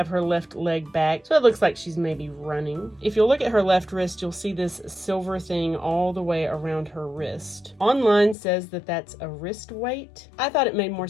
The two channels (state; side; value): drops out; right; at 8.3 s